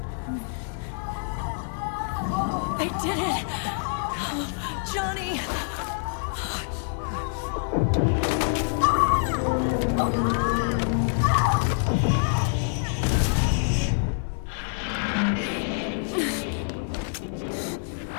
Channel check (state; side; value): silent; right; 57 dB below the other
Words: I did it! Oh, Johnny!